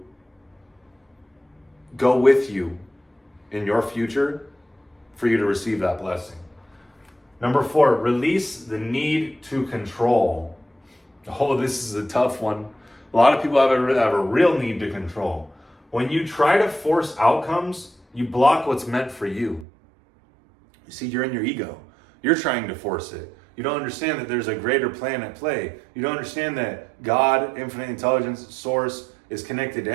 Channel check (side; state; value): left; drops out; at 19.7 s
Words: go with you in your future for you to receive that blessing. Number 4, release the need to control. Oh, this is a tough one. A lot of people have a real need to control. When you try to force outcomes, you block what's meant for you. You see, you're in your ego. You're trying to force it. You don't understand that there's a greater plan at play. You don't understand that God, infinite intelligence, source, is connected to